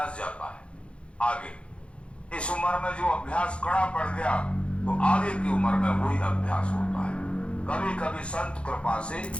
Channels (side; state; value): right; late; 0.059 ms